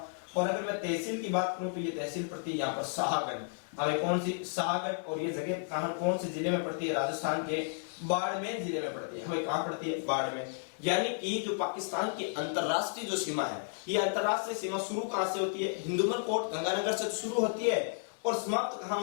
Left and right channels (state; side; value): silent; right; digital silence